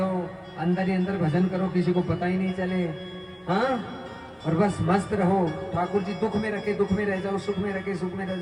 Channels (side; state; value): both; identical; correlation 1.00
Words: अंदर ही अंदर भजन करो, किसी को पता ही नहीं चले। हाँ, और बस मस्त रहो। ठाकुर जी दुख में रखे दुख में रह जाओ, सुख में रखे सुख में रह